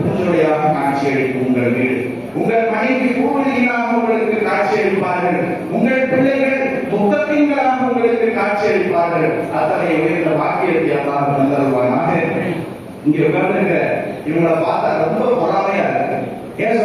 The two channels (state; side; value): identical; both; correlation 1.00